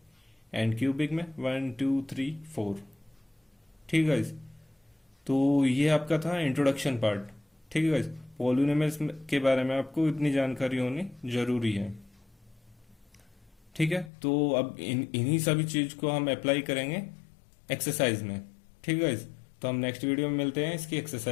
एंड क्यूबिक में 1 2 3 4। ठीक है गाइस। तो ये आपका था इंट्रोडक्शन पार्ट। ठीक है गाइस। पॉलिनोमियल्स के बारे में आपको इतनी जानकारी होनी जरूरी है। ठीक है। तो अब इन्हीं सभी चीज को हम अप्लाई करेंगे एक्सरसाइज में। ठीक है गाइस। तो हम नेक्स्ट वीडियो में मिलते हैं इसकी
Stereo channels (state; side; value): drops out; right; at 14.1 s